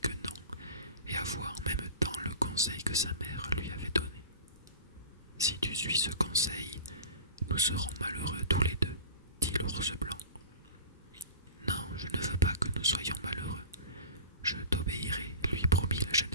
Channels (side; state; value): both; inverted; correlation -0.35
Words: non, et avoua en même temps le conseil que sa mère lui avait donné. « Si tu suis ce conseil, nous serons malheureux tous les deux, dit l'ours blanc. »« Non, je ne veux pas que nous soyons malheureux. Je t'obéirai, lui promit la jeune